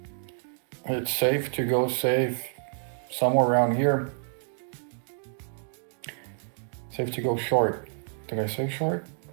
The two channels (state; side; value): silent; left; digital silence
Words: it's safe to go safe somewhere around here. Safe to go short. Did I say short?